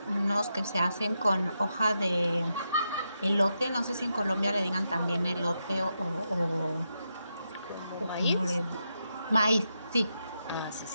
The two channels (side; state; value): both; inverted; correlation -0.85